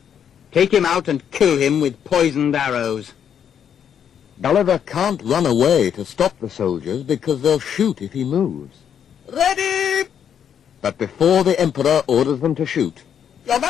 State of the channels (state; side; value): quieter; right; 8.5 dB